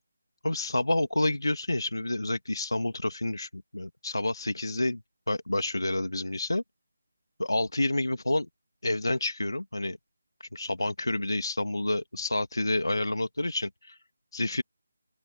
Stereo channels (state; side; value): inverted; both; correlation -0.93